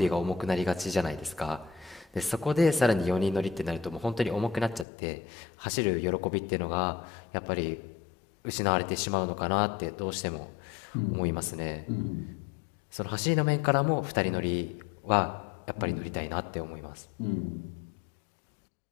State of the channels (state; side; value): drops out; right; at 4.9 s